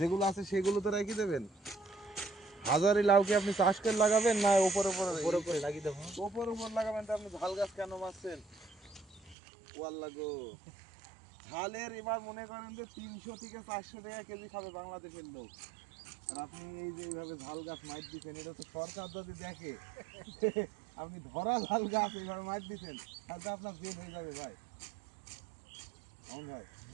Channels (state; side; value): drops out; left; at 9.3 s